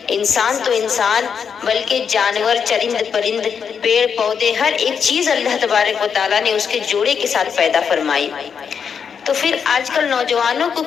انسان تو انسان، بلکہ جانور، چرند پرند، پیڑ پودے، ہر ایک چیز اللہ تبارک و تعالیٰ نے اس کے جوڑے کے ساتھ پیدا فرمائی۔ تو پھر آج کل نوجوانوں کو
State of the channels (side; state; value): right; quieter; 6.8 dB